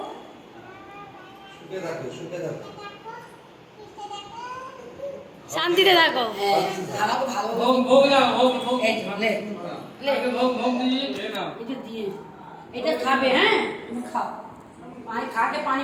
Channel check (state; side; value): identical; both; correlation 1.00